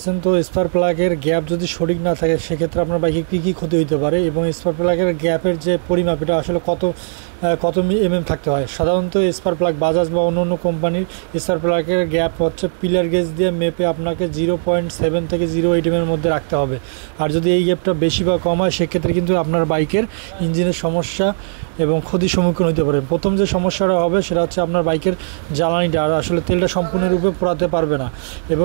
তো স্পার্ক প্লাগের গ্যাপ যদি সঠিক না থাকে সেক্ষেত্রে আপনার বাইকে কী কী ক্ষতি হতে পারে এবং স্পার্ক প্লাগের গ্যাপের যে পরিমাপ এটা আসলে কত থাকতে হয়। সাধারণত স্পার্ক প্লাগ বাজাজ বা অন্য কোম্পানির স্পার্ক প্লাগের গ্যাপ হচ্ছে পিলার গেজ দিয়ে মেপে আপনাকে 0.7 থেকে 0.8 এর মধ্যে রাখতে হবে। আর যদি এই গ্যাপটা বেশি বা কম হয় সেক্ষেত্রে কিন্তু আপনার বাইকের ইঞ্জিনের সমস্যা এবং ক্ষতির সম্মুখীন হতে পারে। প্রথম যে সমস্যাটা হবে সেটা হচ্ছে আপনার বাইকের জ্বালানিটা আর আসলে তেলটা সম্পূর্ণরূপে পোড়াতে পারবে না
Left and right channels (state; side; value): silent; left; digital silence